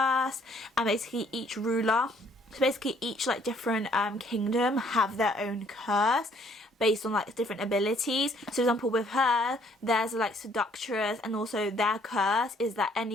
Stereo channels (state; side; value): normal; both; correlation 0.63